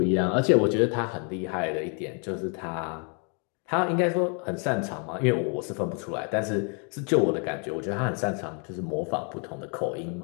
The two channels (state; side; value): quieter; right; 38.8 dB